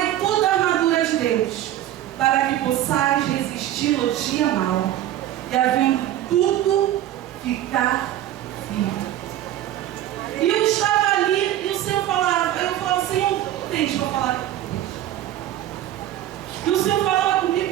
toda a armadura de Deus, para que possais resistir no dia mau, e havendo tudo, ficar firme. E eu estava ali, e o Senhor falava, eu falava, Senhor, o que tens para falar comigo? E o Senhor falava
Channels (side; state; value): left; quieter; 12.9 dB